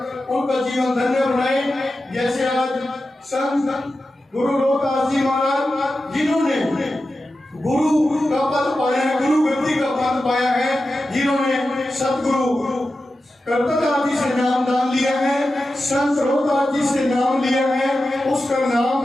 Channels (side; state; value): both; normal; correlation 0.92